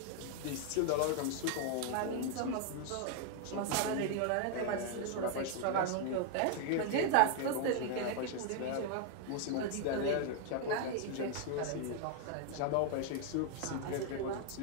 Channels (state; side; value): different; both; correlation 0.00